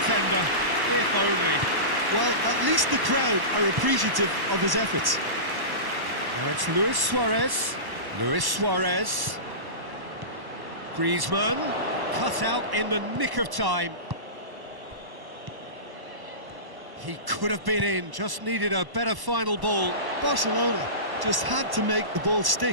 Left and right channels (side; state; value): left; late; 1.1 ms